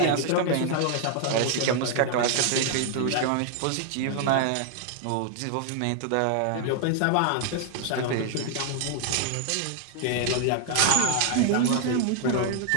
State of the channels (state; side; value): different; both; correlation 0.00